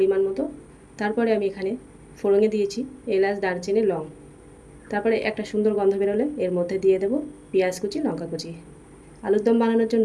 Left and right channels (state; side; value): identical; both; correlation 1.00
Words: মতো। তারপরে আমি এখানে ফোড়নে দিয়েছি এলাচ, দারচিনি, লং। তারপরে একটা সুন্দর গন্ধ বেরোলে এর মধ্যে দিয়ে দেব পেঁয়াজ কুচি, লঙ্কা কুচি। আলুর দম বানানোর